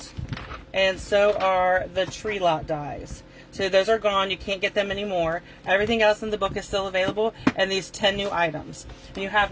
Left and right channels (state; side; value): identical; both; correlation 1.00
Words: and so are the tree lot dies. So those are gone. You can't get them anymore. Everything else in the book is still available, and these 10 new items. And you have